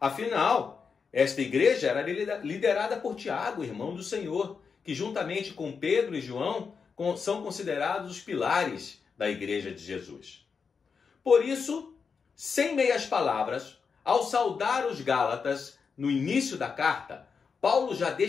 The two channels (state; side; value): quieter; right; 5.6 dB